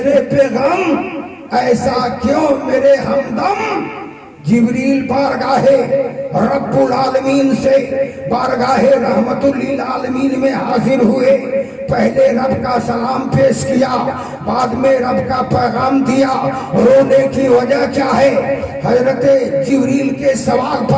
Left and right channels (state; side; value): identical; both; correlation 1.00